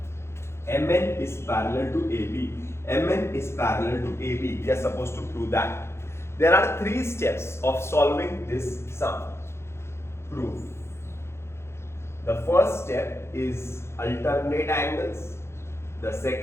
MN is parallel to AB. MN is parallel to AB. We are supposed to prove that. There are 3 steps of solving this sum. Proof. The first step is alternate angles. The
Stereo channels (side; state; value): right; late; 0.13 ms